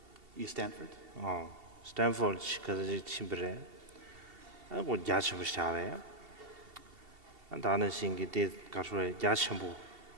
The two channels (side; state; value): left; late; 2.7 ms